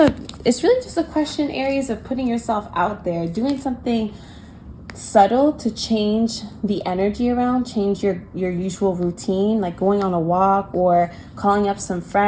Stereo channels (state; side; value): identical; both; correlation 1.00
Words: question, Aries, of putting yourself out there, doing something subtle to change the energy around, change your usual routine, like going on a walk or calling up some